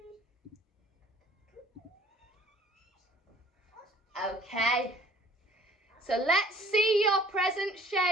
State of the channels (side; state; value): both; normal; correlation 0.54